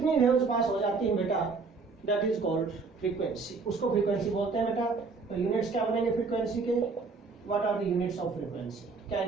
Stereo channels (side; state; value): left; quieter; 4.4 dB